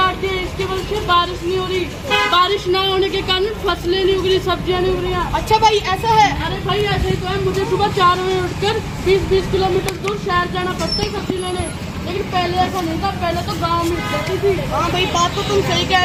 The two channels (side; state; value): both; identical; correlation 1.00